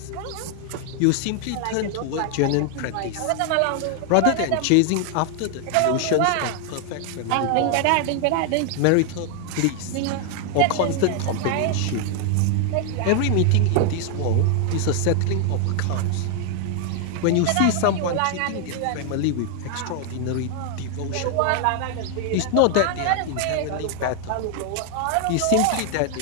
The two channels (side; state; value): both; different; correlation 0.00